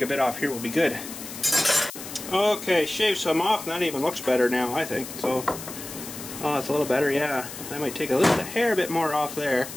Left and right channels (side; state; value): left; noise; hiss, 11 dB below the sound